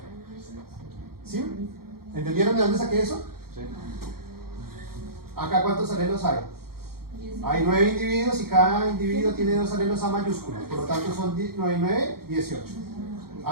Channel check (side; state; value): left; late; 0.94 ms